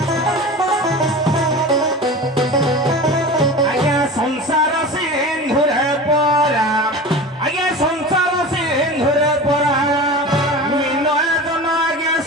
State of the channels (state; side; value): normal; both; correlation 0.33